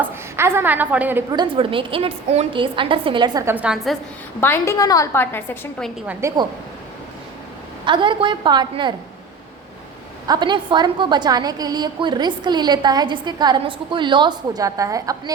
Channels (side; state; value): left; quieter; 4.0 dB